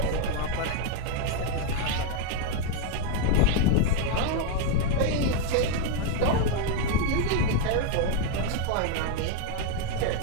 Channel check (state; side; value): different; both; correlation 0.01